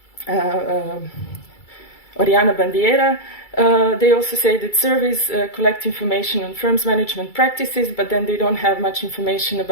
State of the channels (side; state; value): right; late; 2.3 ms